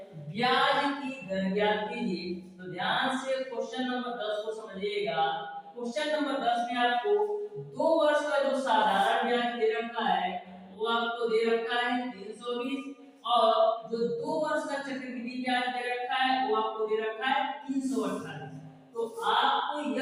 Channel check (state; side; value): identical; both; correlation 1.00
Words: ब्याज की दर ज्ञात कीजिए। तो ध्यान से क्वेश्चन नंबर 10 को समझिएगा। क्वेश्चन नंबर 10 में आपको 2 वर्ष का जो साधारण ब्याज दे रखा है वो आपको दे रखा है 320 और जो 2 वर्ष का चक्रवृद्धि ब्याज दे रखा है वो आपको दे रखा है 328। तो आपको